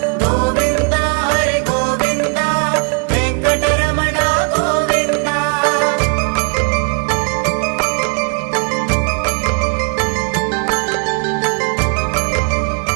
గోవింద హరి గోవింద వెంకటరమణ గోవింద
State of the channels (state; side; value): quieter; left; 34.8 dB